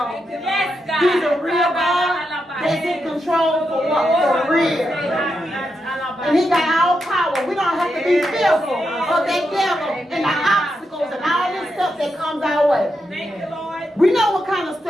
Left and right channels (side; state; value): both; normal; correlation 0.85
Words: Yes, God. He's a real God that's in control for what? For real. And he got all power. We don't have to be fearful of that devil and the obstacles and all this stuff that comes our way. Thank you, Lord. We know what kind of